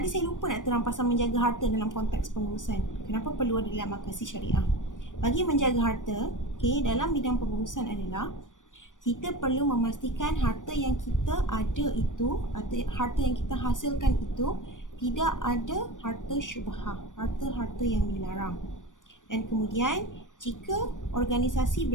saya lupa nak terang pasal menjaga harta dalam konteks pengurusan. Kenapa perlu ada dalam makasih syariah? Bagi menjaga harta, okay, dalam bidang pengurusan adalah kita perlu memastikan harta yang kita ada itu, atau harta yang kita hasilkan itu tidak ada harta syubhah, harta-harta yang dilarang. Dan kemudian jika organisasi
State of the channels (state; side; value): late; right; 0.87 ms